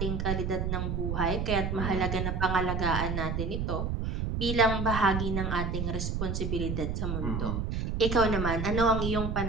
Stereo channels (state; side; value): noise; right; rumble, 1 dB below the sound